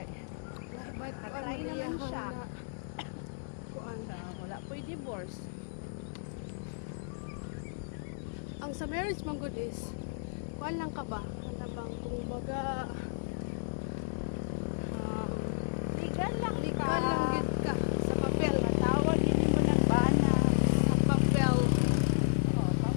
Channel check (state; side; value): silent; right; digital silence